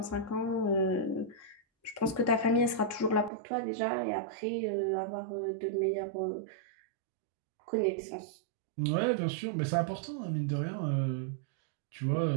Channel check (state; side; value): drops out; left; at 3.3 s